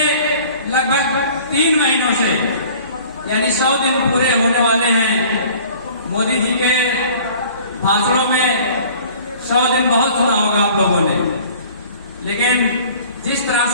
लगभग 3 महीनों से, यानी 100 दिन पूरे होने वाले हैं। मोदी जी के भाषणों में 100 दिन बहुत सुना होगा आप लोगों ने, लेकिन जिस तरह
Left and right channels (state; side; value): inverted; both; correlation -0.49